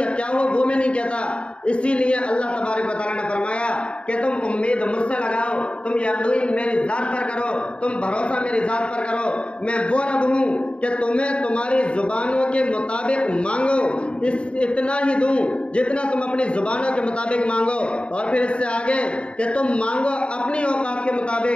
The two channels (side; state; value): right; late; 0.057 ms